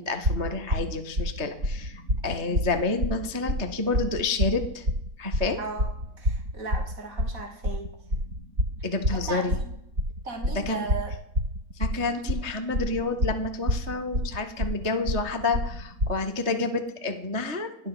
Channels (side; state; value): left; late; 3.3 ms